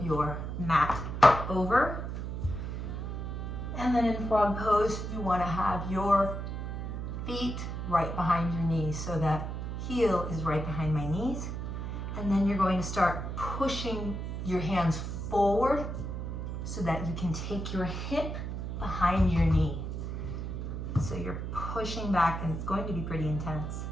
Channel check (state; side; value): noise; right; hum, 4 dB below the sound